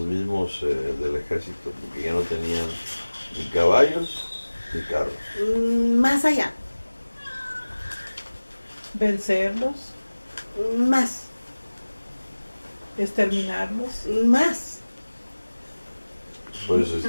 mismos del ejército, porque ya no tenían ni caballos ni carros. Más allá, Vencerlos, más, exterminarlos. más. Pues,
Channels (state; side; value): inverted; both; correlation -1.00